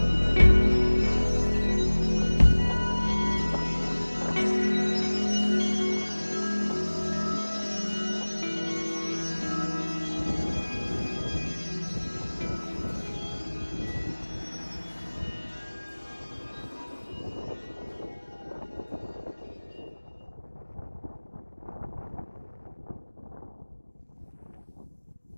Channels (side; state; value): both; inverted; correlation -1.00